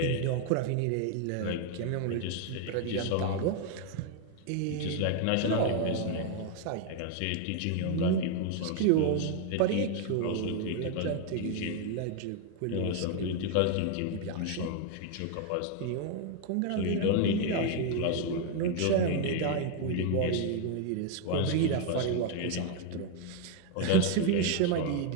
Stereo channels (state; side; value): different; both; correlation 0.01